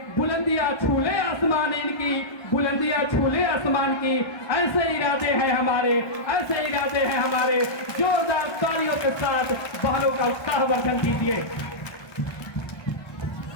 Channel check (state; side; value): late; right; 1.4 ms